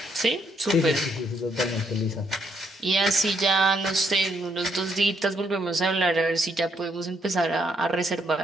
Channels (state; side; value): normal; both; correlation 0.73